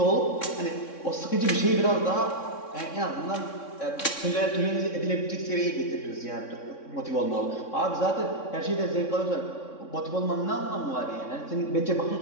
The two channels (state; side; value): late; right; 3.6 ms